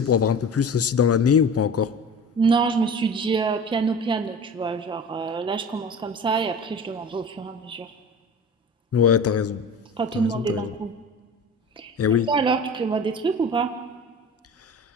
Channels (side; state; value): both; normal; correlation 0.36